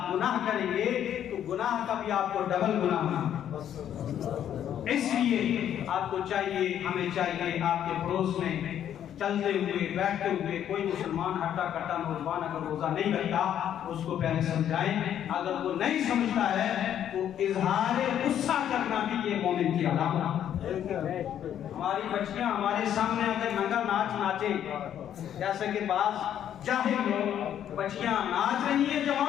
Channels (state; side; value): quieter; right; 10.1 dB